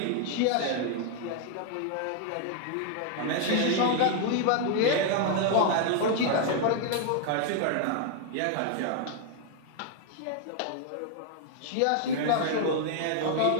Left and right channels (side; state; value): both; different; correlation 0.00